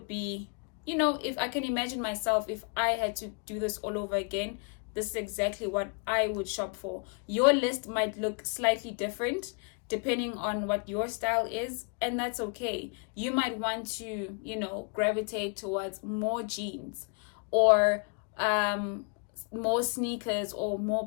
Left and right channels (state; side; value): quieter; right; 37.5 dB